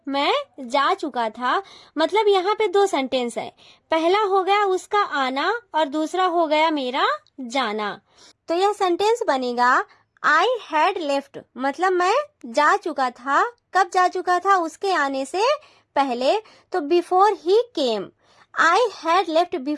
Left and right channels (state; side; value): identical; both; correlation 1.00